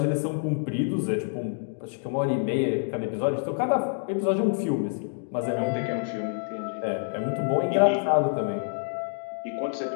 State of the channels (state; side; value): silent; right; digital silence